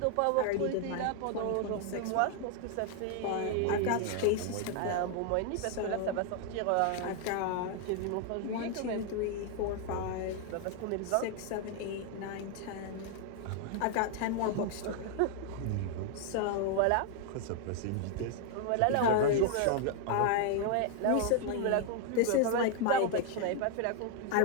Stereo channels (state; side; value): different; both; correlation 0.00